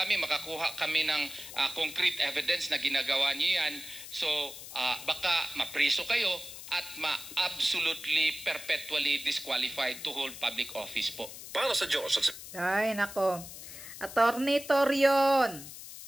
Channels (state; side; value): noise; left; hiss, 13 dB below the sound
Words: makakuha kami ng concrete evidence na ginagawa nyo yan. So baka mapriso kayo at absolutely perpetually disqualified to hold public office po. Para sa Diyos. Ay, nako. Attorney Torion,